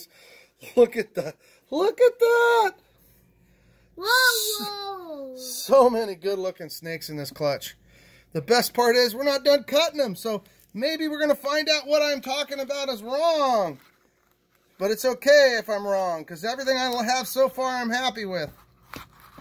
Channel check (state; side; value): identical; both; correlation 1.00